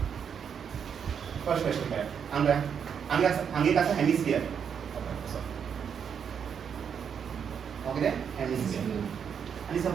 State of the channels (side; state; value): left; quieter; 7.4 dB